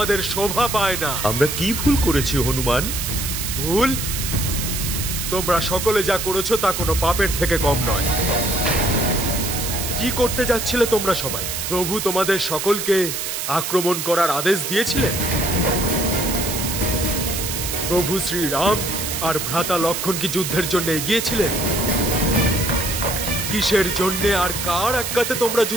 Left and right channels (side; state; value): right; noise; hiss, 3 dB below the sound